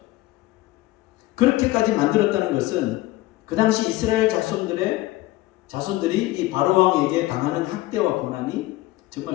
그렇게까지 만들었다는 것은 그 당시 이스라엘 자손들이 이 바로 왕에게 당하는 학대와 고난이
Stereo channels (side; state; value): right; quieter; 17.8 dB